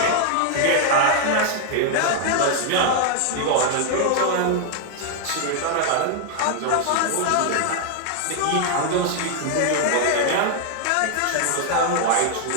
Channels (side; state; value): both; different; correlation 0.00